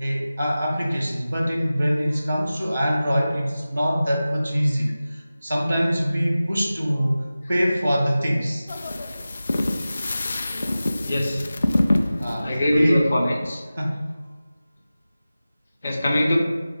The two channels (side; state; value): both; inverted; correlation -0.96